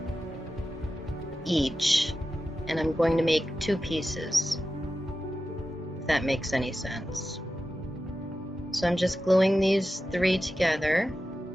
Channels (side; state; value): both; normal; correlation 0.92